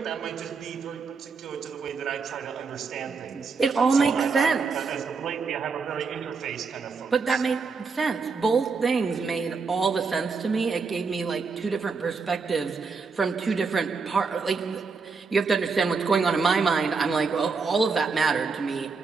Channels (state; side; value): quieter; left; 4.8 dB